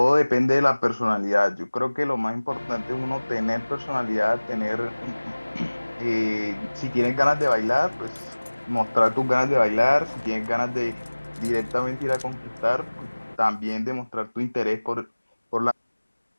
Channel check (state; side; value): inverted; both; correlation -1.00